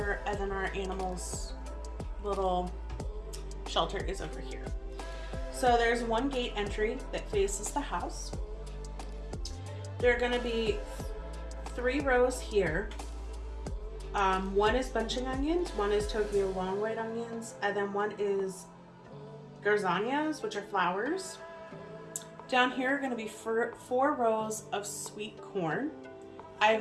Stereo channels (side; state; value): both; identical; correlation 1.00